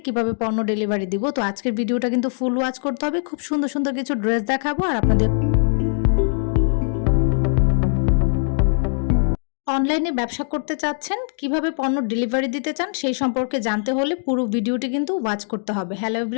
কিভাবে পণ্য ডেলিভারি দিব। তো আজকের ভিডিওটা কিন্তু ফুল ওয়াচ করতে হবে, খুব সুন্দর সুন্দর কিছু ড্রেস দেখাবো আর আপনাদের অনলাইনে ব্যবসা করতে চাচ্ছেন, কিভাবে পণ্য ডেলিভারি দিতে চান সেই সম্পর্কে জানতে হলে পুরো ভিডিওটি কিন্তু ওয়াচ করতে হবে। হ্যালো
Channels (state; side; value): silent; right; digital silence